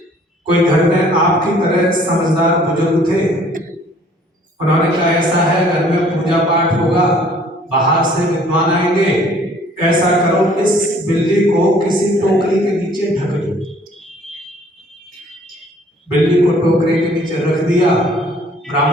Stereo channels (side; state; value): both; normal; correlation 0.57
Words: कोई घर में आपकी तरह समझदार बुजुर्ग थे, उन्होंने कहा ऐसा है घर में पूजा पाठ होगा, बाहर से विद्वान आएंगे, ऐसा करो इस बिल्ली को किसी टोकरी के नीचे ढक दो। बिल्ली को टोकरी के नीचे रख दिया,